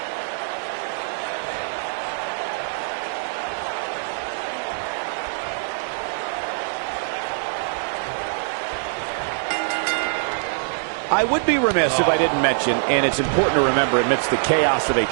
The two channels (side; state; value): left; silent; digital silence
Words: I would be remiss if I didn't mention, and it's important to remember amidst the chaos of a